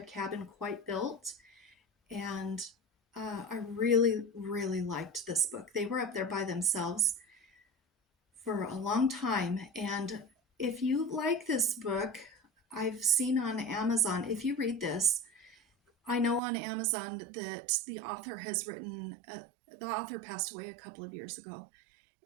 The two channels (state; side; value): drops out; left; at 16.4 s